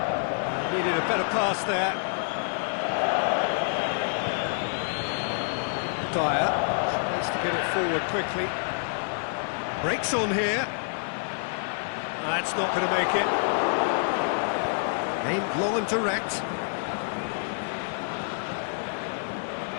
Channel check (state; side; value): silent; right; digital silence